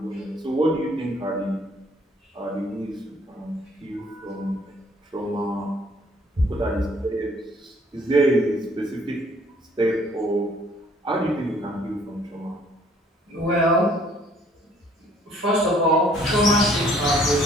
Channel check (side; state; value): both; normal; correlation 0.60